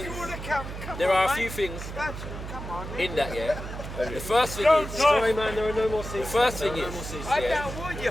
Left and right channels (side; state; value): right; noise; hum, 8 dB below the sound